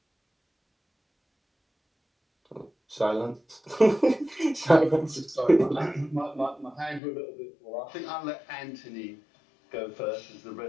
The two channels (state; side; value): drops out; right; at 7.0 s